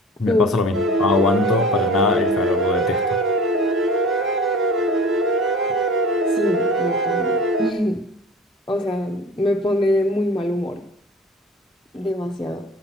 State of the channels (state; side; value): normal; both; correlation 0.41